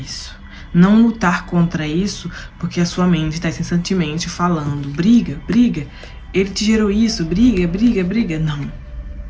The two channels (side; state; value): both; identical; correlation 1.00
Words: Não lutar contra isso, porque a sua mente está incessantemente falando, briga, briga, ele te gerou isso, briga, briga, briga. Não.